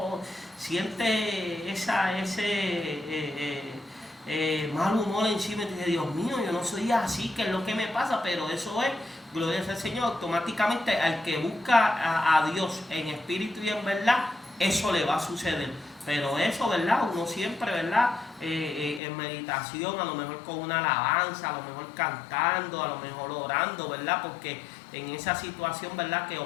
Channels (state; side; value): drops out; right; at 19.0 s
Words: sientes ese mal humor encima, y dice, Dios mío, yo no soy así, ¿qué es lo que me pasa? Pero eso es, gloria sea al Señor, automáticamente al que busca a Dios en espíritu y en verdad, eso le va a suceder. Pero eso, ¿verdad? Uno siempre, ¿verdad? En meditación, a lo mejor con una alabanza, a lo mejor cantando, a lo mejor orando, ¿verdad? Porque en esa situación, ¿verdad? Que